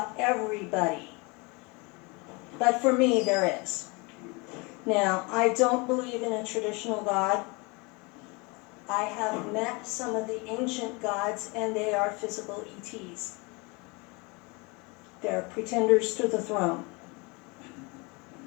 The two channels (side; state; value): right; quieter; 28.2 dB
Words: everybody, but for me there is. Now, I don't believe in a traditional God. I have met some of the ancient gods and they are physical ETs. They're pretenders to the throne.